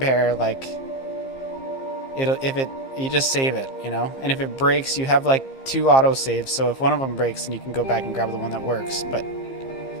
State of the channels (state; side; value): late; right; 15 ms